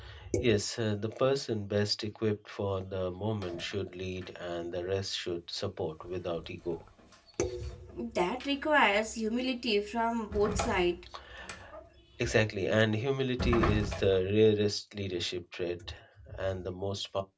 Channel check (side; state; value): both; identical; correlation 1.00